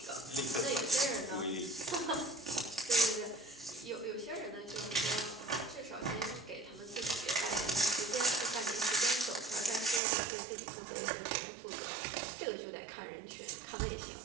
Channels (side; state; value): left; drops out; at 10.0 s